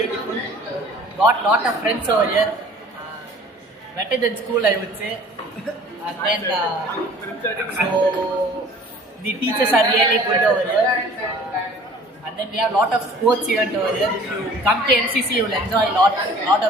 Got lot of friends over here. Better than school, I would say. And then so the teachers are really good over here. And then we have lot of sports event over here. If you come to MCC, you will enjoy lot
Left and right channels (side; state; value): both; normal; correlation 0.49